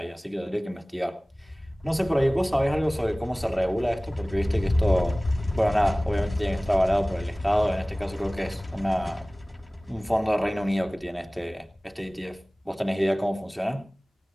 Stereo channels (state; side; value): normal; both; correlation 0.98